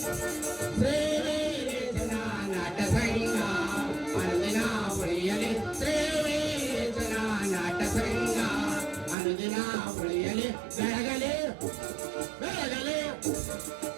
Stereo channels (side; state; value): left; drops out; at 9.2 s